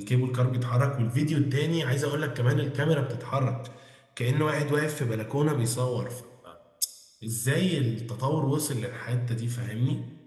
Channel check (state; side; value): identical; both; correlation 1.00